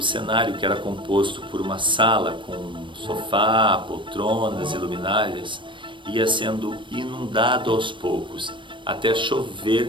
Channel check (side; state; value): left; late; 0.24 ms